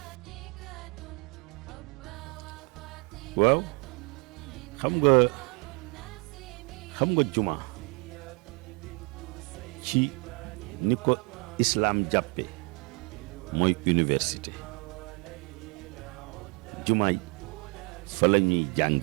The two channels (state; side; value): quieter; left; 33.0 dB